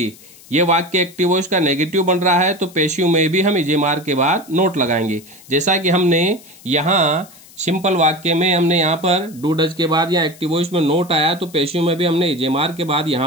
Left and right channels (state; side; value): noise; left; hiss, 23 dB below the sound